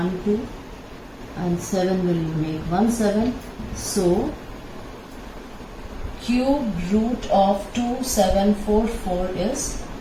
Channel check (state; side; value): identical; both; correlation 1.00